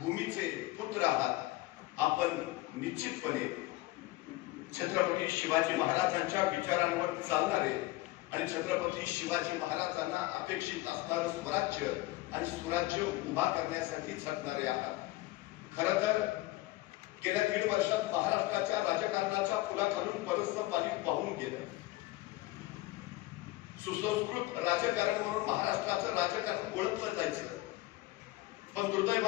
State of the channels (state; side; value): quieter; right; 18.9 dB